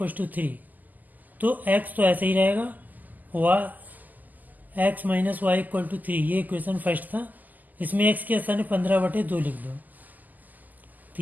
to 3, तो x तो ऐसे ही रहेगा। x minus Y equal to 3, ये इक्वेशन फर्स्ट था। इसमें x के स्थान 15/2 लिख दो,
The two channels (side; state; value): left; late; 0.083 ms